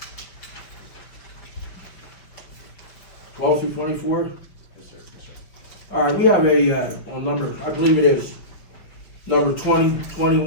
12 through 24? yes, sir, yes, sir. All right, we have a, on number, I believe it is, number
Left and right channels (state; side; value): late; right; 5.8 ms